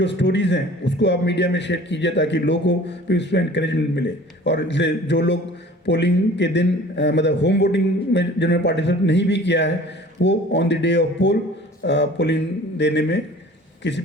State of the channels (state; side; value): normal; both; correlation 0.46